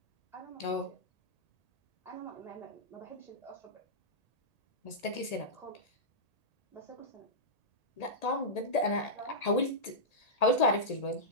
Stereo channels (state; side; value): late; right; 1.8 ms